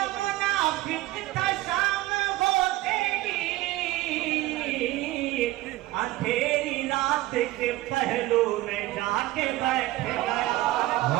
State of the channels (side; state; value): left; quieter; 17.3 dB